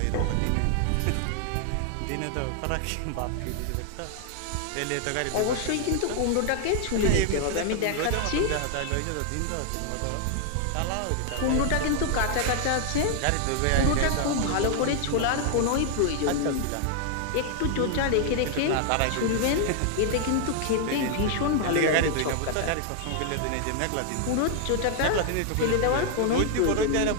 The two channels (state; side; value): different; both; correlation 0.00